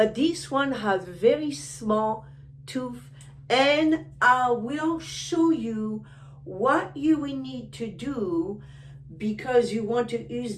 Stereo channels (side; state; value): both; identical; correlation 1.00